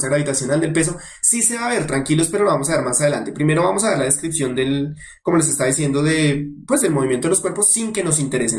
gravitacional, del peso, sí se va a ver, tranquilos, pero lo vamos a ver más adelante. Primero vamos a ver la descripción del, como les está diciendo, pues del movimiento de los cuerpos sin que nos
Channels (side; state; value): both; identical; correlation 1.00